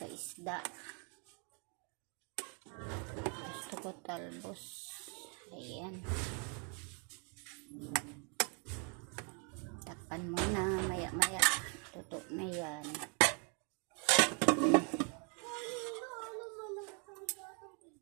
isda. Gusto ko talbos. Ayan. Takpan mo na. Maya-maya. Tuto na yan.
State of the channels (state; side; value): quieter; left; 37.3 dB